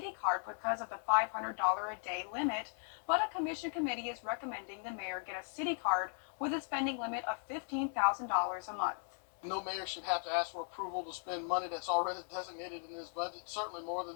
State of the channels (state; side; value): silent; right; 53 dB below the other